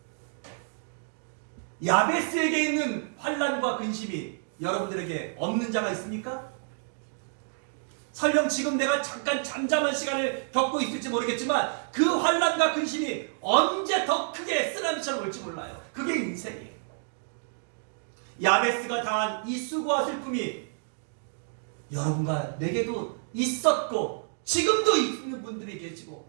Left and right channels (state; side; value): silent; left; digital silence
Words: 야베스에게 있는 환난과 근심이 여러분들에게 없는 자가 있습니까? 설령 지금 내가 잠깐 잠잠한 시간을 겪고 있을지 모르겠지만 그 환난과 근심이 언제 더 크게 쓰나미처럼 올지 몰라요. 그게 인생이에요. 야베스가 당한 이 수고와 슬픔이 여러분과 내게도 있었고 지금도 있는 분들이 계시고